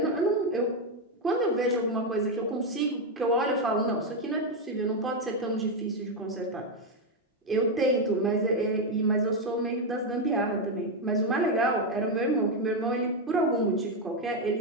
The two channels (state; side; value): normal; both; correlation 0.05